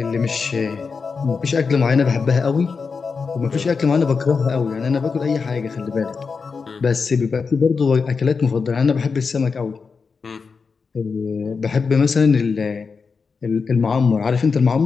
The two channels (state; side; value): quieter; right; 5.1 dB